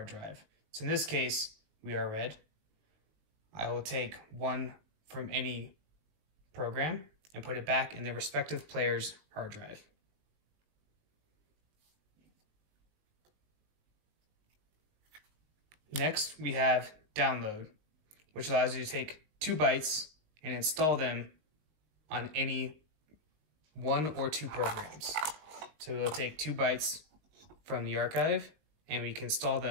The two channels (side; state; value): left; late; 19 ms